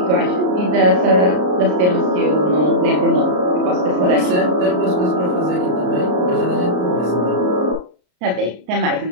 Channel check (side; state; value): left; late; 33 ms